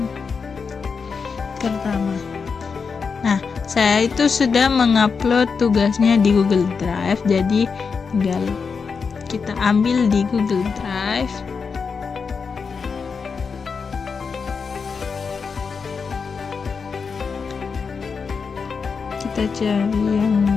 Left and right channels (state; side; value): quieter; right; 5.4 dB